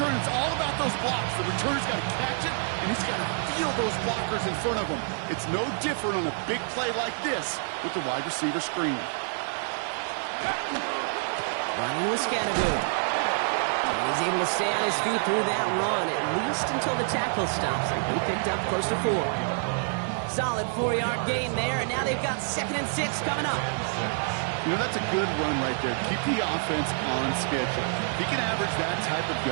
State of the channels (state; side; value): silent; left; 60 dB below the other